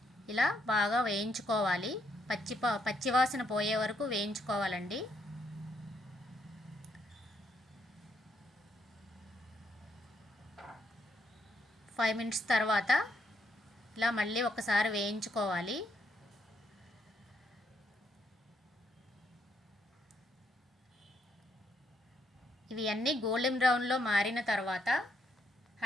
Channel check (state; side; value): normal; both; correlation 0.75